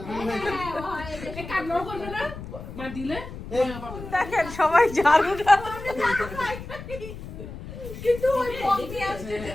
দেখেন সবাই ঝাড়ুটা কিন্তু ওই পথে আসছে যে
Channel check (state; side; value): noise; left; rumble, 12 dB below the sound